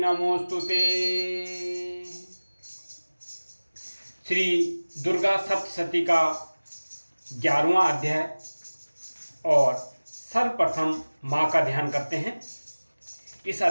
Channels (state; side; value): inverted; both; correlation -1.00